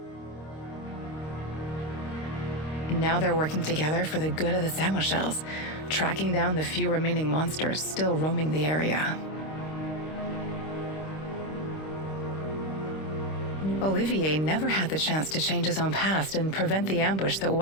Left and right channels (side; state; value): right; late; 26 ms